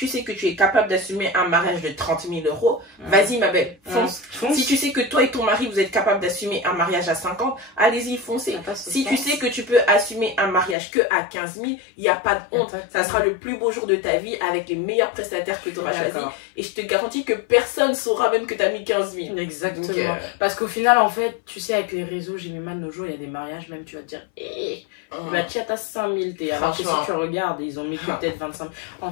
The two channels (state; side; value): drops out; right; at 10.8 s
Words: sais que tu es capable d'assumer un mariage de 30 000 euros, vas-y ma belle, fonce. Si tu sais que toi et ton mari, vous êtes capable d'assumer un mariage à 50, allez-y, foncez. Si tu sais que tu peux assumer un mariage que à 15 000, il n'y a pas de honte. Ça sera le plus beau jour de ta vie avec les meilleurs prestataires que tu auras choisis. Et je te garantis que personne saura même que tu as mis 15 000. Exactement. Donc, parce qu'au final, en fait, tu sais, avec les réseaux, j'ai mis mal nos jours, il y a des mariages, même tu vas te dire, tu as 5 000, alors que si tu regardes, ils ont mis peut-être 25 000. En